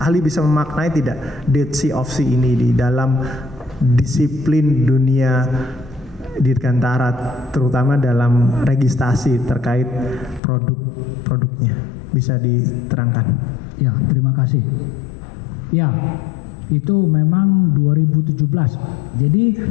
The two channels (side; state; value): right; drops out; at 10.4 s